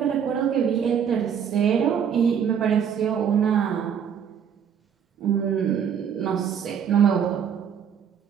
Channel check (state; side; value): quieter; left; 7.9 dB